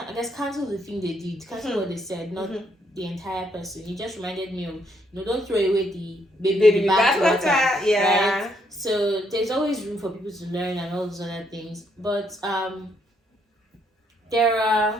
guess cancel the thing they did, cancel what they said, not the entire person. It just reminded me of, don't throw away the baby bathwater. Yeah. Right? So there's always room for people to learn and all those other things. But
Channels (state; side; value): normal; both; correlation 0.73